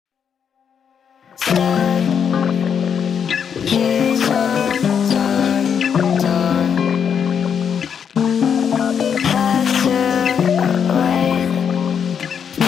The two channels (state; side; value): quieter; right; 7.5 dB